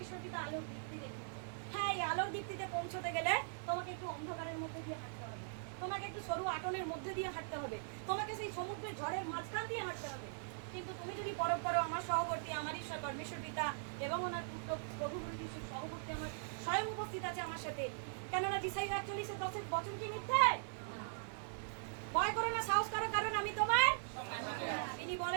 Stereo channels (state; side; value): silent; left; digital silence